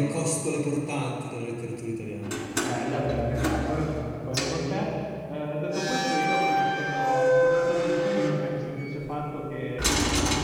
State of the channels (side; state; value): both; identical; correlation 1.00